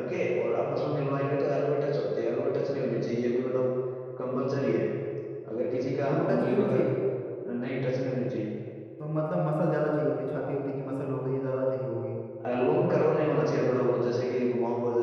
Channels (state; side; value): identical; both; correlation 1.00